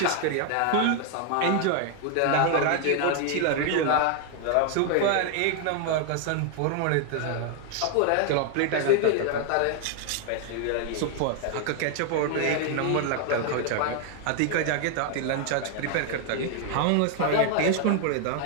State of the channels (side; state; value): both; different; correlation 0.00